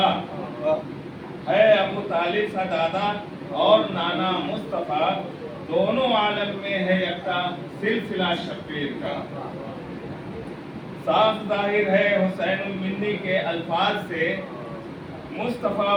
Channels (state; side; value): identical; both; correlation 1.00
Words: ہے ابو طالب سا دادا اور نانا مصطفیٰ، دونوں عالم میں ہے یکتا سلسلہ شبیر کا، صاف ظاہر ہے حسین المندی کے الفاظ سے مصطفیٰ